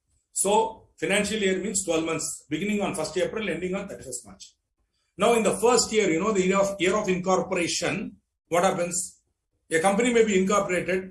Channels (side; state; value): both; identical; correlation 1.00